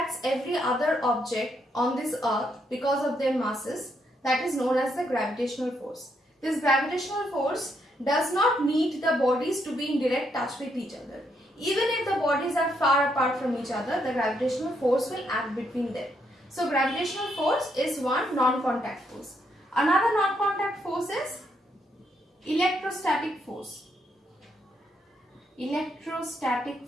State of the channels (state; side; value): normal; both; correlation 0.76